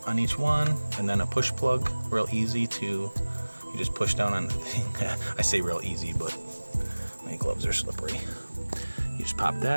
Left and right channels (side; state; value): both; inverted; correlation -1.00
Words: on each one and then a push plug, real easy to, you just push down on the thing. I say real easy, but my gloves are slippery. You just pop